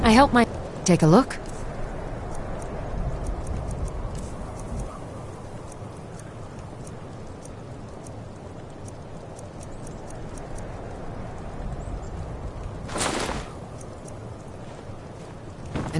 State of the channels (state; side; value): identical; both; correlation 1.00